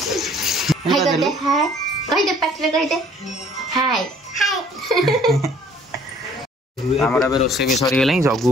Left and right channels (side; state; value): both; normal; correlation 0.56